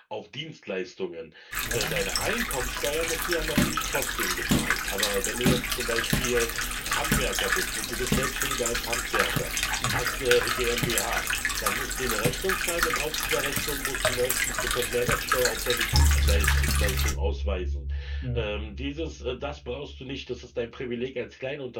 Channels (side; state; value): both; identical; correlation 1.00